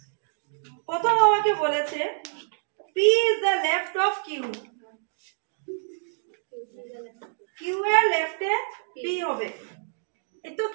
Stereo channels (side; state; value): left; silent; digital silence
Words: প্রথম আমাকে বলেছে P is the left of Q, Q এর লেফটে পি হবে, এই তো